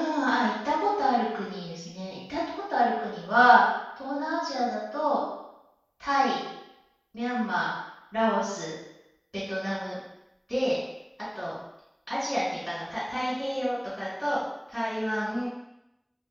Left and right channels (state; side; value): identical; both; correlation 1.00